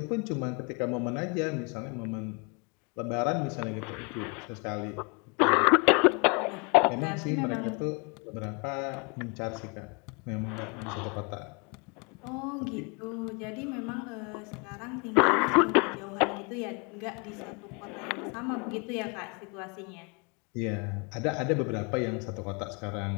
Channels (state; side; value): quieter; right; 32.4 dB